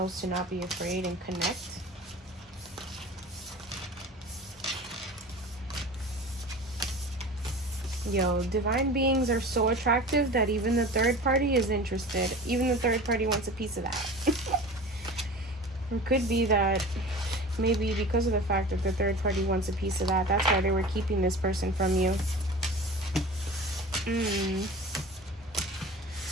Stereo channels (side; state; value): both; normal; correlation 0.37